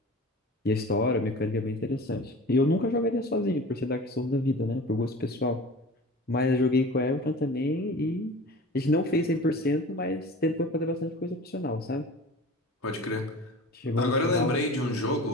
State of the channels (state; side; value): normal; both; correlation 0.38